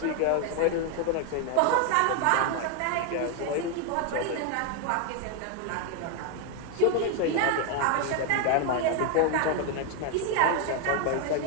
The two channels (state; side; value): different; both; correlation 0.01